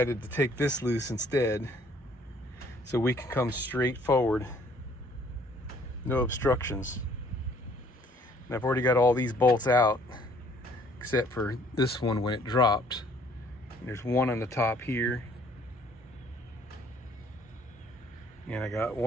to take this loose instead, so we can come straight forward, no obstructions. And I've already got all these bolts out, except for this one when it dropped. And there's one on the top here, and I got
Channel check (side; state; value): both; normal; correlation 0.60